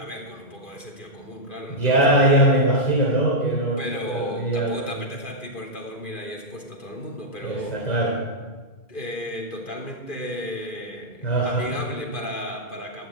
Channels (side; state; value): right; late; 2.4 ms